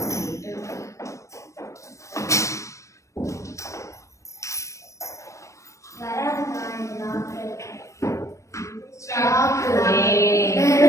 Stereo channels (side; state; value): right; late; 0.15 ms